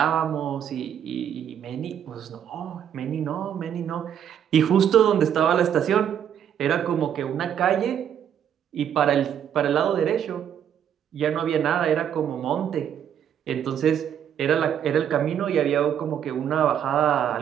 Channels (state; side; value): quieter; left; 9.2 dB